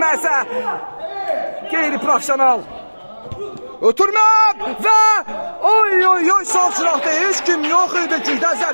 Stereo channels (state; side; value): inverted; both; correlation -1.00